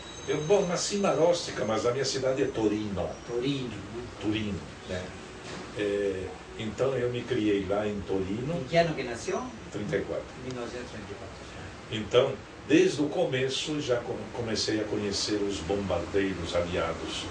Eu nasci em Marostica, mas a minha cidade é Torino. Torino, né? Torino, né? Então eu me criei lá em Torino. Em que ano que nasceu? 34. 1934. Então, Desde o começo já comecei a conhecer os bombardeiros aliados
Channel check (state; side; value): identical; both; correlation 1.00